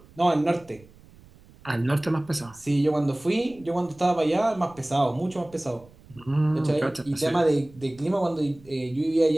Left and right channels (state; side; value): noise; right; rumble, 25 dB below the sound